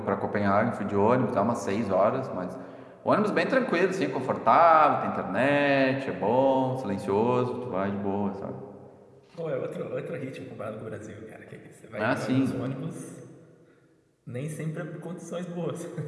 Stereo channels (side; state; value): both; identical; correlation 1.00